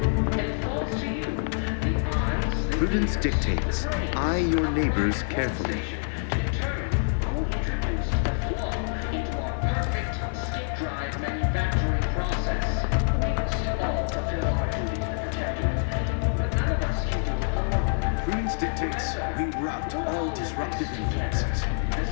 Prudence dictates, eye your neighbors carefully. Prudence dictates, we rout all disruptive influences. The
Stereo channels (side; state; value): right; silent; digital silence